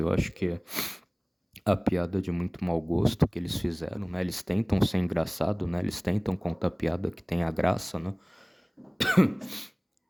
acho que a piada de muito mau gosto que eles fizeram, né? Eles tentam ser engraçado, né? Eles tentam contar piada que tem a graça, né?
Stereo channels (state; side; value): identical; both; correlation 1.00